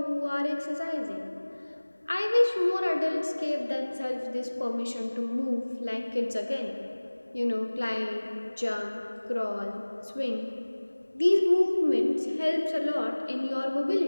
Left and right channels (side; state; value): both; inverted; correlation -1.00